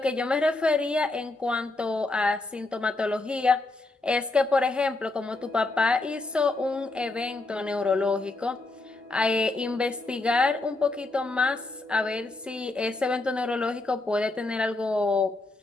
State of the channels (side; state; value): right; quieter; 3.0 dB